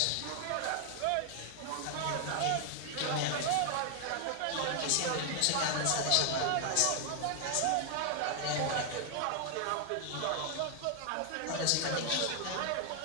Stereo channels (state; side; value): different; both; correlation 0.00